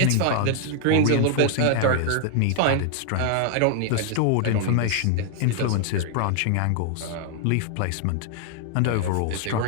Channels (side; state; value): both; different; correlation 0.00